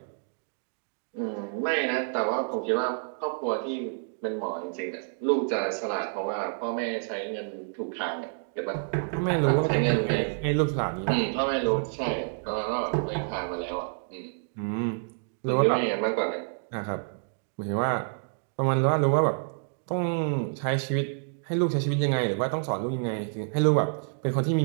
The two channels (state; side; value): silent; left; digital silence